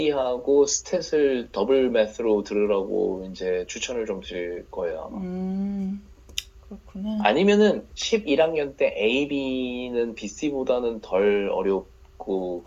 스탯을 더블 매스로 들으라고 이제 추천을 좀 드릴 거예요, 아마. 음, 그렇구나. 아니면은 11학년 때 AB는 BC보다는 덜 어렵고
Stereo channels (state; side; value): identical; both; correlation 1.00